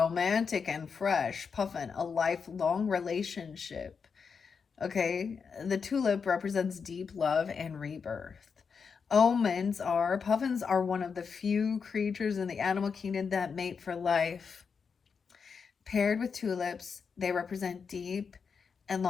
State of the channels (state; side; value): quieter; right; 5.8 dB